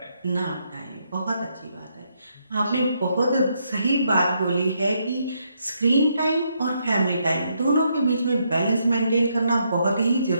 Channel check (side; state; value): both; inverted; correlation -0.76